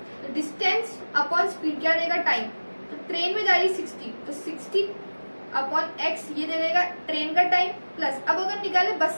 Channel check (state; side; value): inverted; both; correlation -1.00